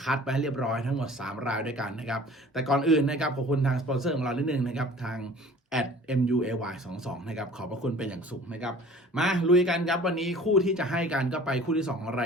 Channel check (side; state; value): both; normal; correlation 0.47